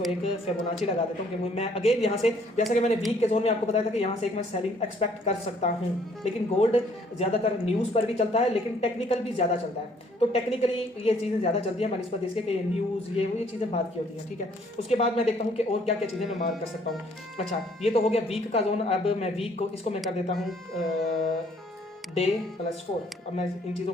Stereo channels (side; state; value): both; normal; correlation 0.63